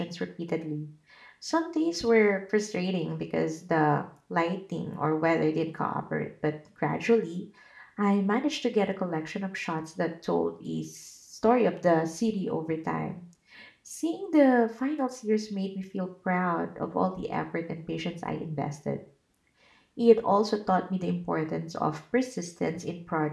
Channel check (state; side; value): identical; both; correlation 1.00